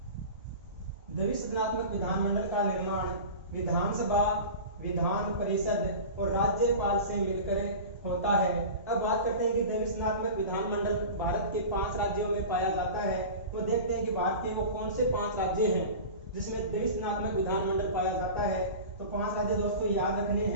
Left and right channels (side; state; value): both; inverted; correlation -0.33